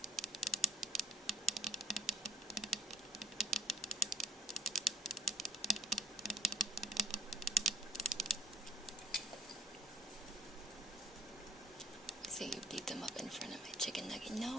So you beat them up in front of my chicken nugget.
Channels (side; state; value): both; normal; correlation 0.52